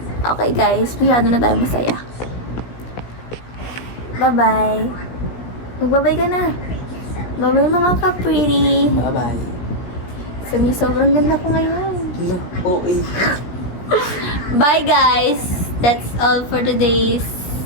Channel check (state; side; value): late; right; 17 ms